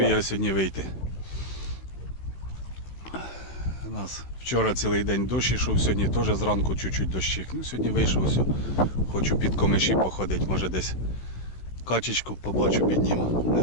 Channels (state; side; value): late; right; 16 ms